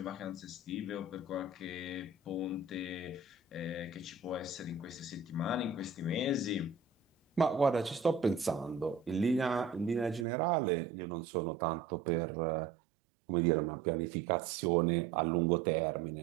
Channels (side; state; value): left; drops out; at 10.2 s